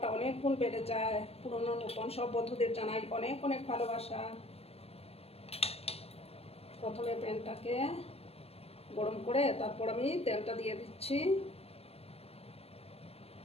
অনেক গুণ বেড়ে যায়। পুরনো নতুন সব বন্ধুদের জানাই অনেক অনেক ভালোবাসা। প্রথমে প্যানটাকে গরম করে তারপর আমি তেলটা দিয়ে দিচ্ছি।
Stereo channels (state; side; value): late; right; 0.29 ms